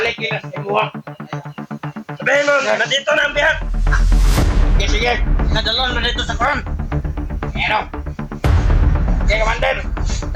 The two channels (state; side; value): identical; both; correlation 1.00